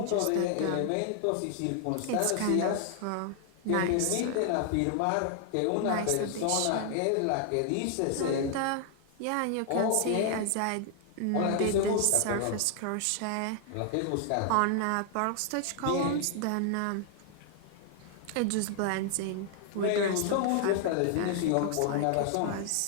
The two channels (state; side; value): different; both; correlation 0.00